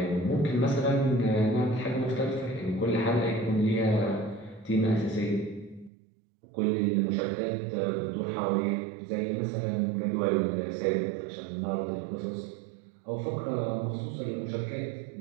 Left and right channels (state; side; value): drops out; left; at 5.9 s